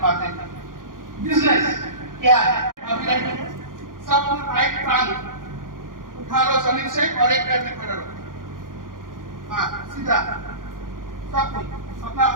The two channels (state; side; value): late; left; 0.90 ms